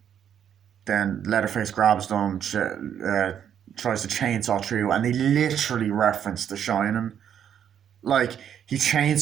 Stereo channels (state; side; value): quieter; left; 9.0 dB